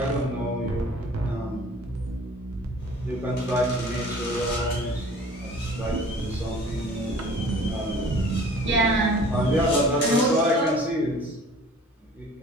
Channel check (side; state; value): both; normal; correlation 0.48